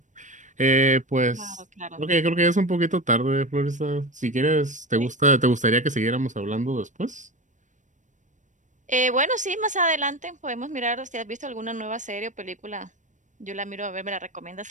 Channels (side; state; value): left; late; 0.36 ms